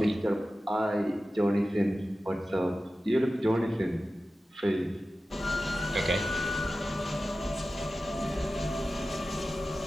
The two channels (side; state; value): both; normal; correlation 0.94